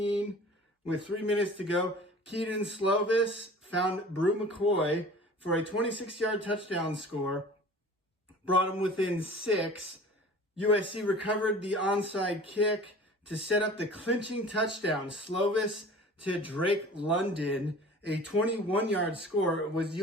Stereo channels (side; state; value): both; normal; correlation 0.43